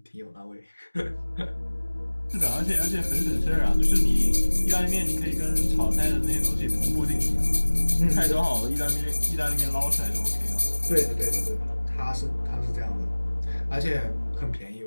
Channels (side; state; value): both; inverted; correlation -1.00